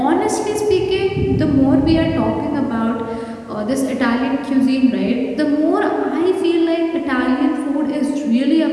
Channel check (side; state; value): both; identical; correlation 1.00